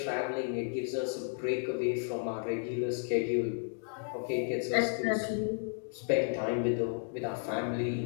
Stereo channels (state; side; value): silent; right; 56 dB below the other